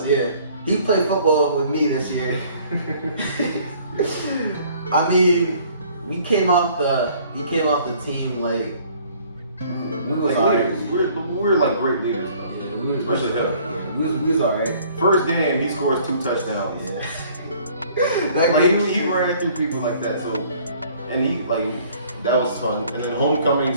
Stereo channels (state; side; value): inverted; both; correlation -0.56